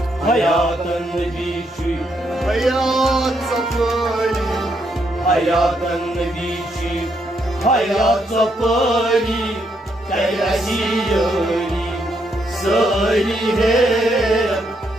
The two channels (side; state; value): both; normal; correlation 0.76